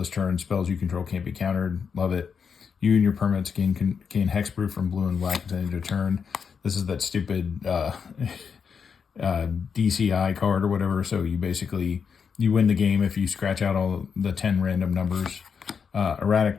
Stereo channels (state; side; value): quieter; right; 6.3 dB